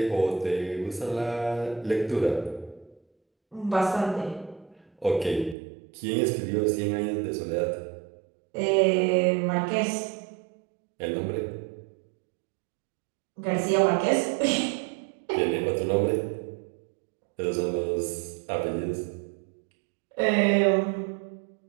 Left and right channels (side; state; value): left; drops out; at 5.6 s